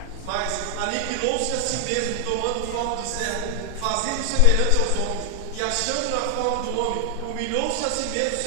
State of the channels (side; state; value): both; different; correlation 0.00